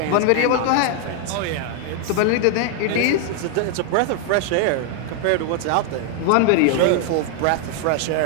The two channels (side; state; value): both; different; correlation 0.00